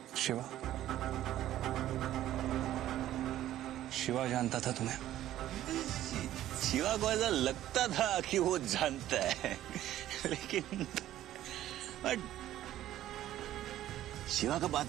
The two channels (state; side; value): quieter; left; 13.2 dB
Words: शिवा, शिवा जानता था तुम्हें? शिवा को ऐसा लगता था कि वो जानता है, लेकिन बट शिवा का